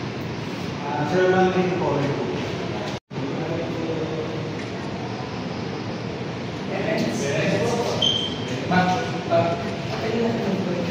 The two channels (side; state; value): both; identical; correlation 1.00